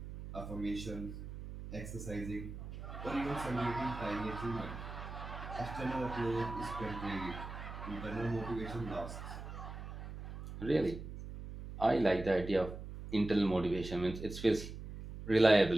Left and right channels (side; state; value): right; noise; hum, 10 dB below the sound